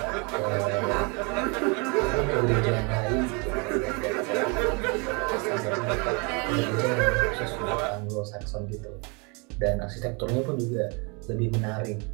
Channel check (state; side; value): quieter; left; 31.5 dB